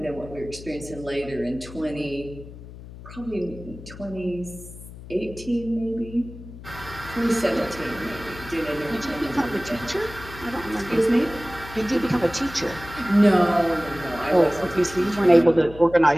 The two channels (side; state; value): left; noise; hum, 15 dB below the sound